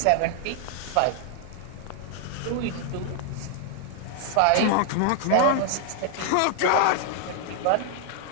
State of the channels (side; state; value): both; different; correlation 0.00